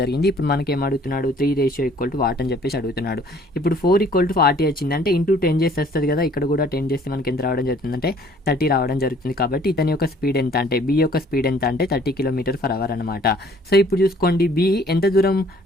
జరిగింది. ఇప్పుడు మనకి ఏం అడుగుతున్నాడు 3 రేషియో ఈక్వల్ టు వాట్ అని చెప్పేసి అడుగుతున్నాడు. ఇప్పుడు 4 = 40 వచ్చింది అంటే ఇంటూ 10 చేస్తే వస్తుంది కదా, ఇక్కడ కూడా 10 చేస్తే మనకి ఎంత రావడం జరుగుతుంది అంటే 30 రావడం జరుగుతుంది. కాబట్టి ఇతని యొక్క స్పీడ్ ఎంత అంటే బి యొక్క స్పీడ్ ఎంత అంటే 30 km/h అనమాట. సో ఇప్పుడు చూసుకోండి బి ఎంత దూరం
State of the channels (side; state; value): both; normal; correlation 0.57